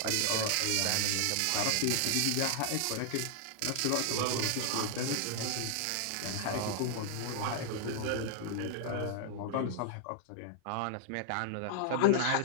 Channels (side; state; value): both; different; correlation 0.00